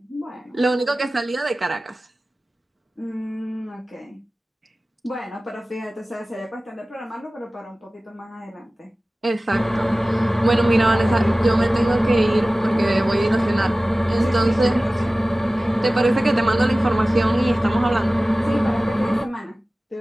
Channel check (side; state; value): both; normal; correlation 0.97